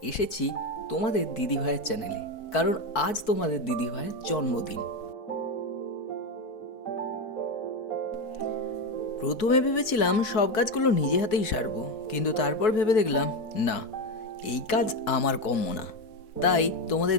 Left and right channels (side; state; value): right; late; 4.6 ms